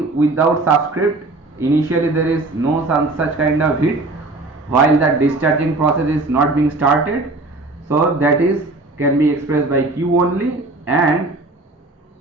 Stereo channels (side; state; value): left; quieter; 3.1 dB